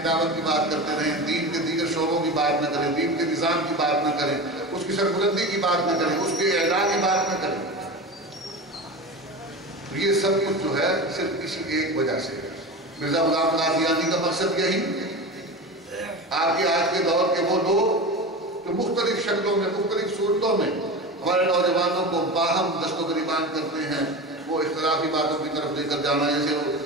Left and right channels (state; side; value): normal; both; correlation 0.27